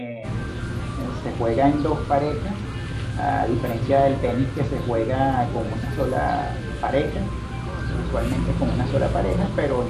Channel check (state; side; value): identical; both; correlation 1.00